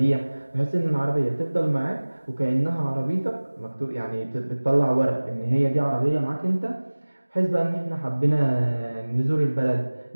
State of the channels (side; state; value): both; inverted; correlation -1.00